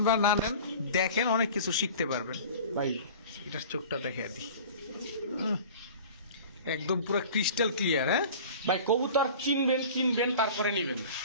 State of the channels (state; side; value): inverted; both; correlation -0.40